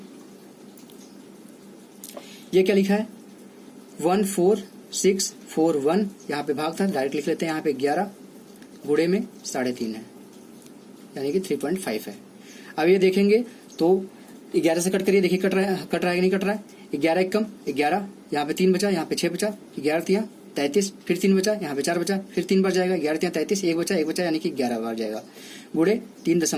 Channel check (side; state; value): both; identical; correlation 1.00